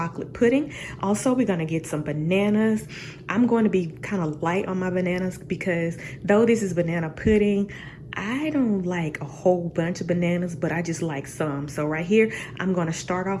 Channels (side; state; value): both; identical; correlation 1.00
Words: pudding. Also, we're gonna get some bananas. I'm going to be kind of light on my bananas because though this is banana pudding, I don't like a whole bunch of bananas, but I just like some. So right here, I'm going to start